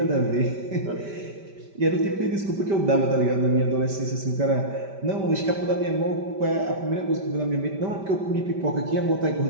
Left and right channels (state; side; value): late; left; 5.1 ms